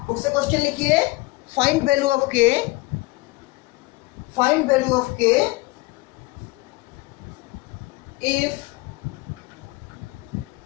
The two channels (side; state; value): right; quieter; 22.3 dB